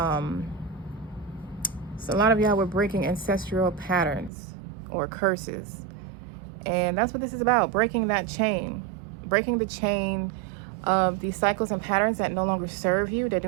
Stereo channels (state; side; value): drops out; left; at 4.3 s